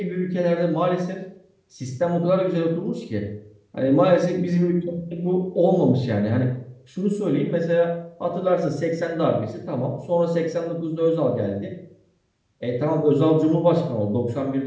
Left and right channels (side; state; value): both; identical; correlation 1.00